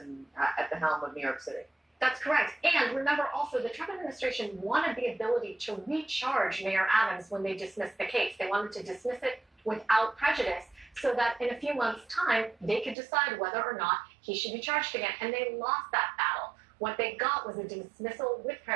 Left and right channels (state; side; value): drops out; left; at 13.0 s